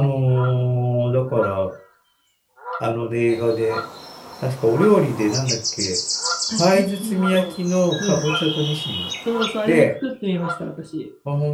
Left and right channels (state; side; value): identical; both; correlation 1.00